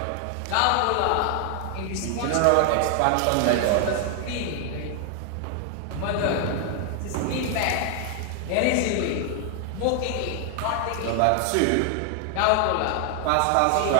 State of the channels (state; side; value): different; both; correlation 0.00